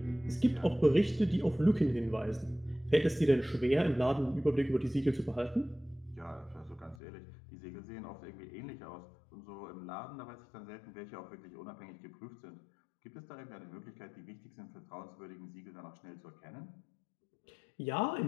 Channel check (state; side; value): drops out; right; at 7.0 s